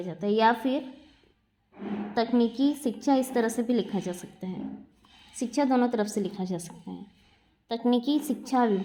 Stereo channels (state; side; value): identical; both; correlation 1.00